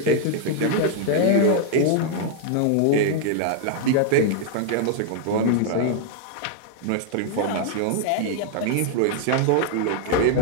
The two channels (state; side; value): different; both; correlation 0.00